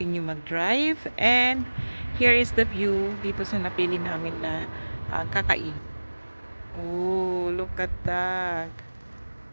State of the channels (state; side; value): inverted; both; correlation -1.00